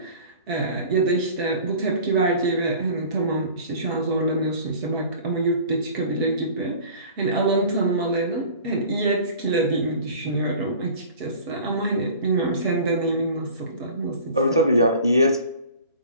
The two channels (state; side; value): inverted; both; correlation -0.43